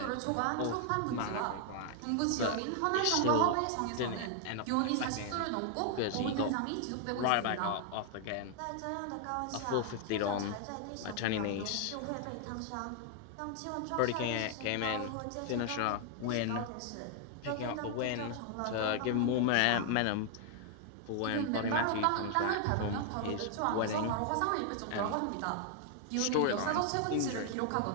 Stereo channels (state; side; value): different; both; correlation 0.00